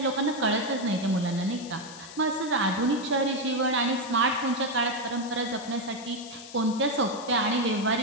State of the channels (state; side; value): noise; left; hiss, 15 dB below the sound